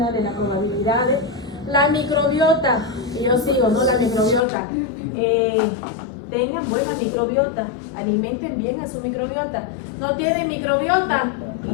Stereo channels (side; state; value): right; drops out; at 4.4 s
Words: de las probabilidades. La microbiota, y yo sigo, ¿no? La microbiota. Tengan buena microbiota, alimenten bien a su microbiota. No tienen microbiota,